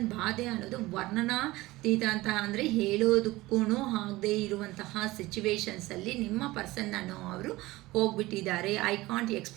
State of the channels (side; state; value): left; quieter; 19.2 dB